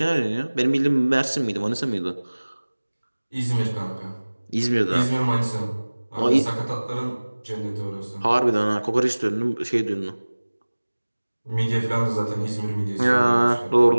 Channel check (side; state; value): both; inverted; correlation -1.00